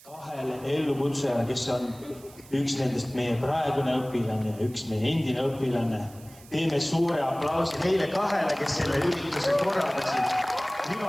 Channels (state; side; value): noise; right; hiss, 23 dB below the sound